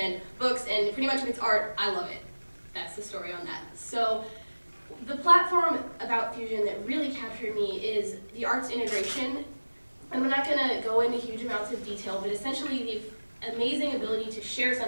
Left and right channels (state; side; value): inverted; both; correlation -1.00